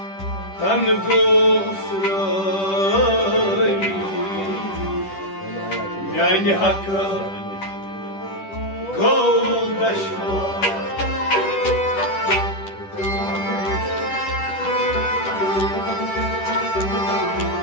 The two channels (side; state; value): right; late; 10 ms